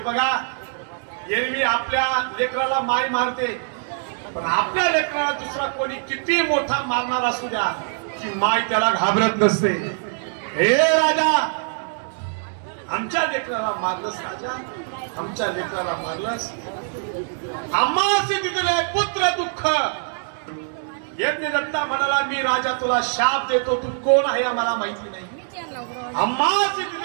एरवी आपल्या लेकराला माय मारते, पण आपल्या लेकराला दुसरा कोणी किती मोठा मारणार असू द्या, की माय त्याला घाबरत नसते. हे राजा, आमच्या लेकराला मारलंस राजा, आमच्या लेकराला मारलंस. आम्हासी दिले पुत्र दुःख. यज्ञ दत्ता म्हणाला, मी राजा तुला शाप देतो, तू कोण आहे आम्हाला माहिती नाही. आम्हासी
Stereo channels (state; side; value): silent; left; digital silence